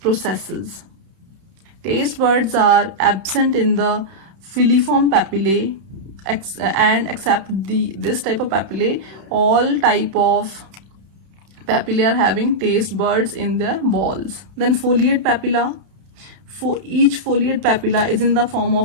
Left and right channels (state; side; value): late; left; 31 ms